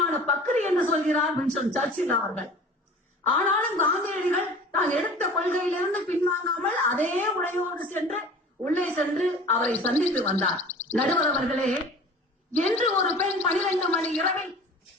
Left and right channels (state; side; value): normal; both; correlation 0.42